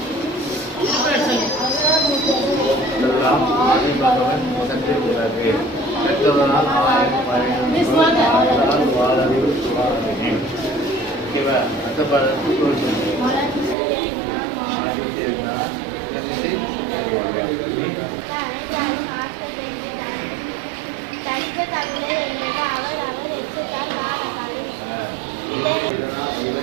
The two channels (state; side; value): drops out; left; at 13.8 s